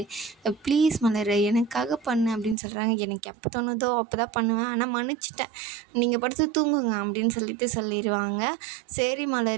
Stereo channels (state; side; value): drops out; left; at 2.6 s